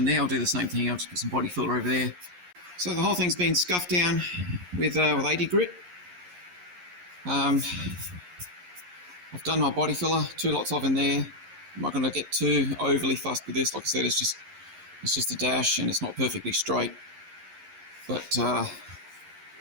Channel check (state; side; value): late; left; 11 ms